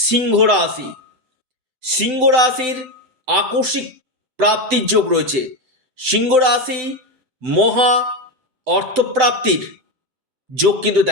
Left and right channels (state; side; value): late; left; 7.8 ms